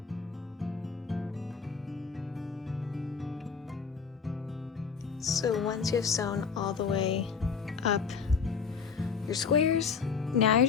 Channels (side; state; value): right; quieter; 5.8 dB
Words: So once you have sewn all the way up your squares, now you're